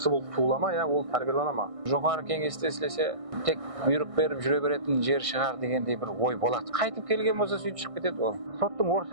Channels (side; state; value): left; late; 1.6 ms